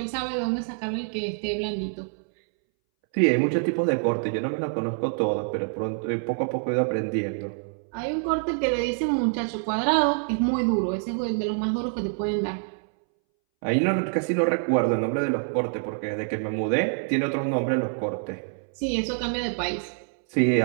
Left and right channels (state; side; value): silent; left; 61 dB below the other